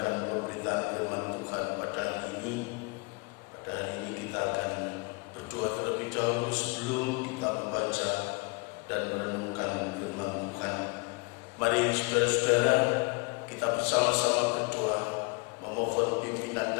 pemberitaan firman Tuhan pada hari ini. Pada hari ini kita akan berdoa terlebih dahulu sebelum kita membaca dan merenungkan firman Tuhan. Mari saudara-saudara, kita bersama-sama berdoa, memohon pimpinan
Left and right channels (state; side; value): quieter; right; 32.0 dB